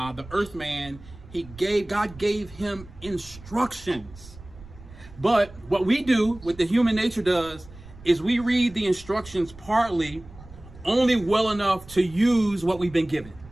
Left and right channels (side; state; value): right; noise; rumble, 19 dB below the sound